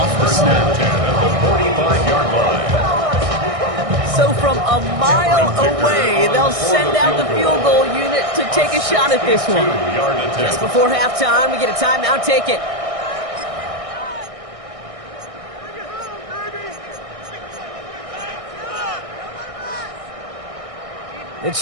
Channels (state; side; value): late; left; 1.6 ms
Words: the snap. At the 45-yard line. So from a mile away, they'll send out the field goal unit to take a shot at this one. Just before halftime, we get a timeout. Take it. The